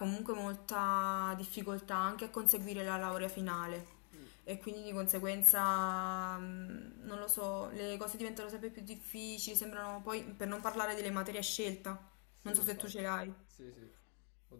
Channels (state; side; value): quieter; right; 39.7 dB